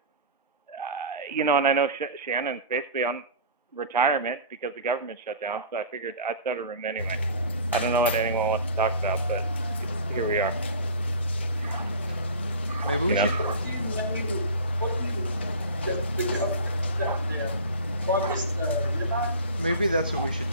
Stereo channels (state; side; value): inverted; both; correlation -0.37